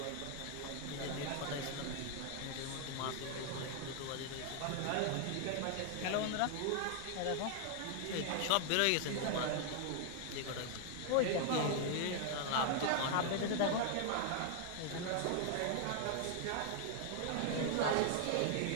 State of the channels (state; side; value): different; both; correlation 0.00